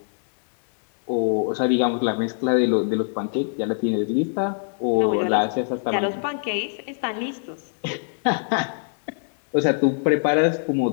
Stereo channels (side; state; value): right; silent; digital silence